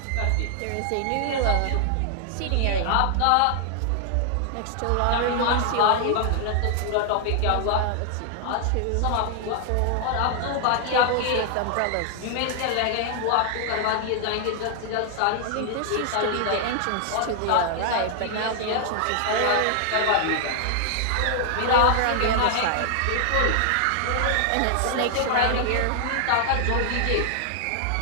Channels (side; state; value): both; different; correlation 0.00